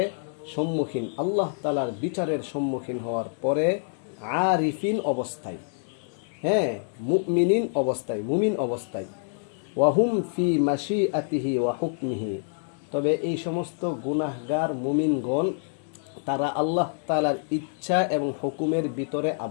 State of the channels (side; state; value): right; silent; digital silence